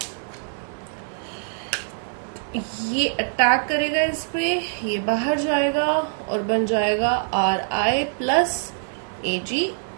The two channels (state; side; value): silent; left; digital silence